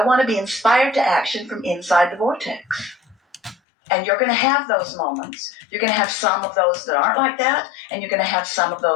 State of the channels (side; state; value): right; drops out; at 3.6 s